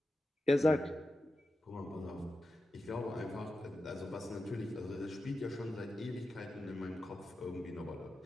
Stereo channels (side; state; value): both; normal; correlation 0.91